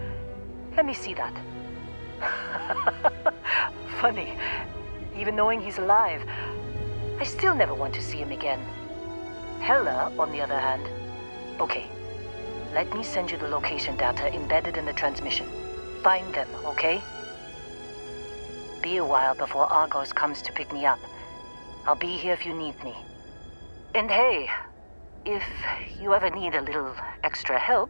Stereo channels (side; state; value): both; inverted; correlation -1.00